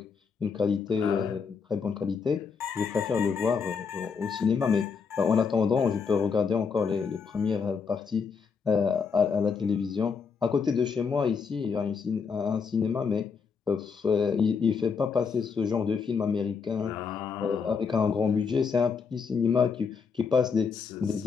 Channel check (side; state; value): right; quieter; 5.7 dB